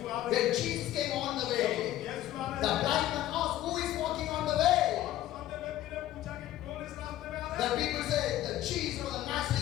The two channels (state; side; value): quieter; right; 13.7 dB